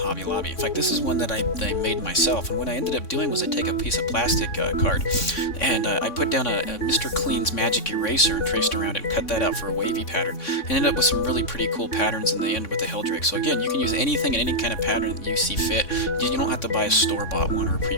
Lobby. In fact, this is one that I made myself, and what I ended up doing was I take a piece of plastic card, and I put down a Mr. Clean's magic eraser and traced around it and cut that out for a wavy pattern, and ended up with some really pretty cool patterns in the end with the Heldrake. So again, you can use anything and any kind of pattern that you see fit. You don't have to buy a store-bought one or a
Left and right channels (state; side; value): late; right; 3.6 ms